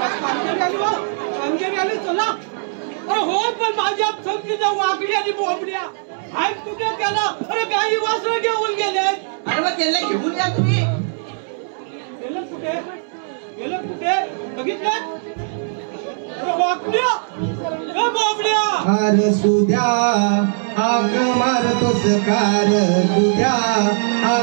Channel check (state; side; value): silent; left; 66 dB below the other